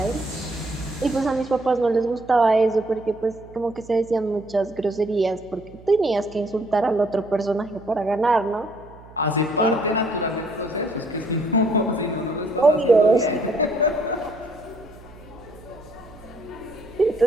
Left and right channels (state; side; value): noise; right; hum, 21 dB below the sound